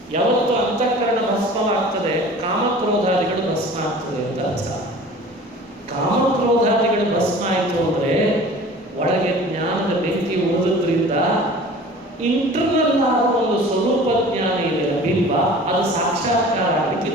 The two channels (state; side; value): normal; both; correlation 0.43